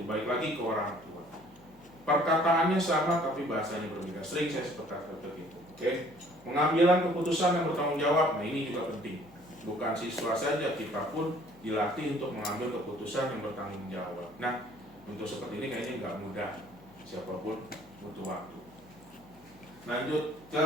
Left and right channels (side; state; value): left; noise; hum, 27 dB below the sound